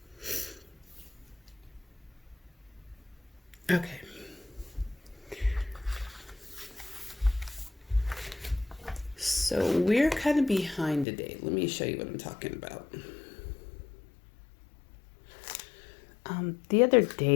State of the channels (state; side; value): drops out; right; at 11.1 s